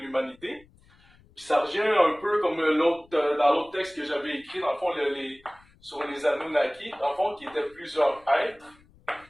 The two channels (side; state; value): left; noise; rumble, 29 dB below the sound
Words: Puis ça revient un peu comme dans l'autre texte que j'avais écrit, dans le fond, sur les Anunnaki, dans le fond, qui étaient plusieurs êtres